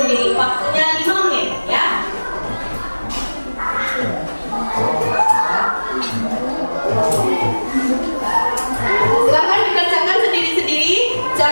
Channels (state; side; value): inverted; both; correlation -1.00